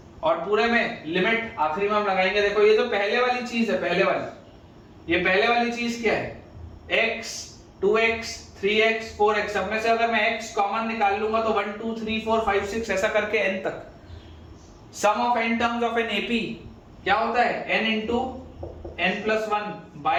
और पूरे में लिमिट आखिरी में हम लगाएंगे। देखो ये जो पहले वाली चीज है, पहले वाली चीज क्या है, x 2x 3x 4x, सब में से अगर मैं x कॉमन निकाल लूंगा तो 1 2 3 4 5 6 ऐसा करके n तक। Sum of n terms of an AP क्या होता है, n into n plus 1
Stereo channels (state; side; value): identical; both; correlation 1.00